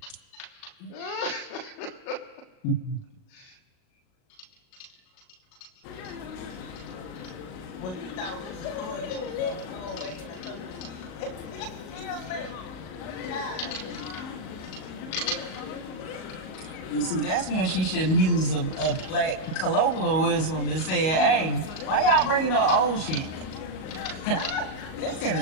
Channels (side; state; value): right; late; 38 ms